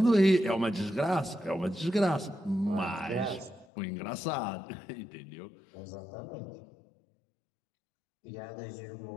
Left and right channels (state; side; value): drops out; right; at 3.7 s